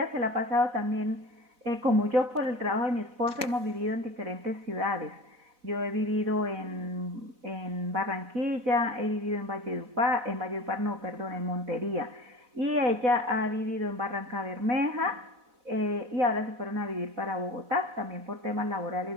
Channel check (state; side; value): late; left; 4.0 ms